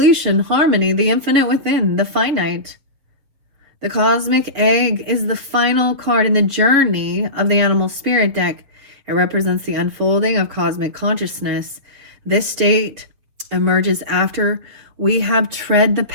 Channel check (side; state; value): left; late; 7.0 ms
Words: harmony, the infinite within, the finite. The cosmic egg is the final card in the journey of the animal spirit deck. It represents the unfolding of cosmic consciousness. This state emerges after we have tread the